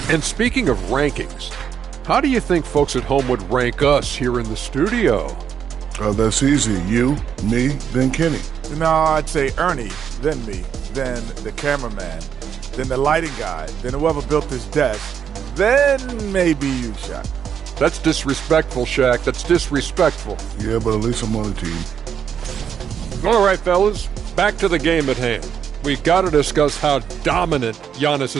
And speaking of rankings, how do you think folks at home would rank us here in the studio? That's easy. You, me, then Kenny. No, I'd say Ernie, then me, then the cameraman, then the lighting guy, then whoever built this desk, then maybe you, Shaq. That's disrespectful, Shaq. That's disrespectful. Yeah, but at least I'm on the team. All right, fellas, back to the game at hand. We've got to discuss how dominant Giannis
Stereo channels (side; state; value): left; quieter; 8.0 dB